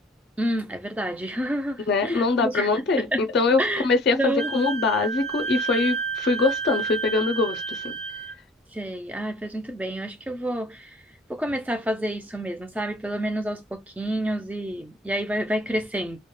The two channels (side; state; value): both; normal; correlation 0.51